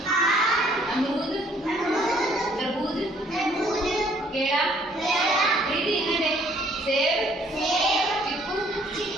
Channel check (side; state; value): both; normal; correlation 0.62